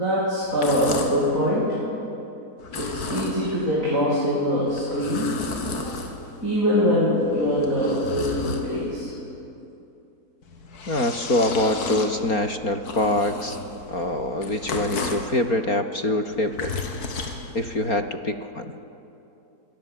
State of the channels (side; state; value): right; late; 4.6 ms